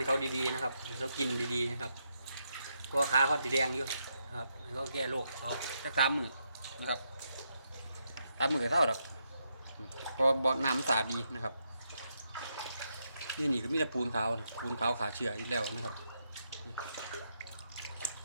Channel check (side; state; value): both; inverted; correlation -0.81